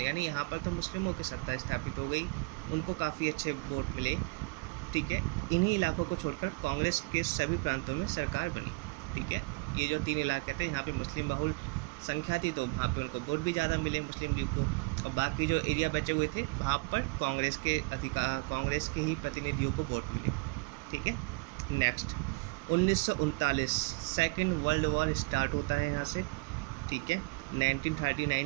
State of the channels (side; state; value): left; quieter; 27.6 dB